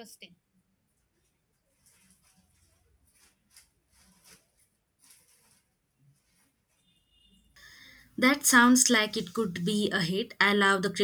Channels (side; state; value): both; identical; correlation 1.00